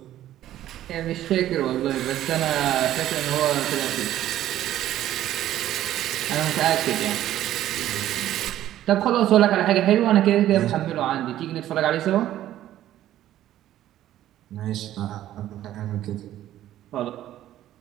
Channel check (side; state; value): left; quieter; 12.9 dB